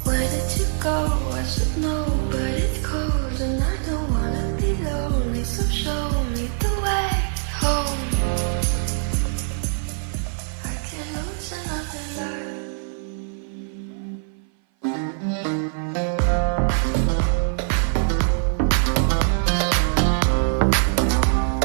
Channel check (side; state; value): left; silent; 58 dB below the other